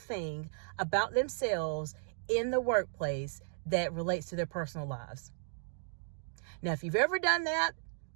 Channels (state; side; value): silent; left; digital silence